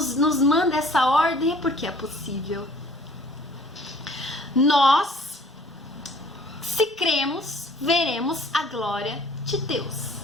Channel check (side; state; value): both; normal; correlation 0.54